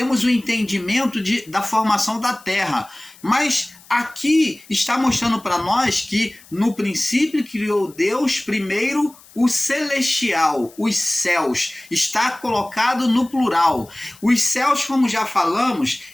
o entendimento da formação da terra. Mas aqui está mostrando para nós que no princípio criou Deus primeiro o celestial, os céus. Está colocado no plural. Os céus, como já falamos,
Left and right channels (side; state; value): left; noise; hiss, 24 dB below the sound